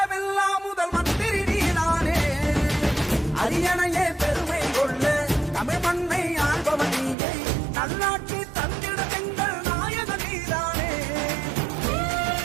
முதல் மந்திரி நீதானே. அரியணையே பெருமை கொள்ள தமிழ் மண்ணை ஆள்பவன் நீயே. நல்லாட்சி தந்திட எங்கள் நாயக நீதானே.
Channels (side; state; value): left; drops out; at 7.2 s